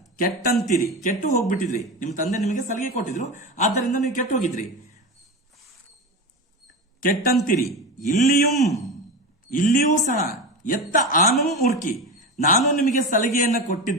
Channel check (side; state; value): both; normal; correlation 0.23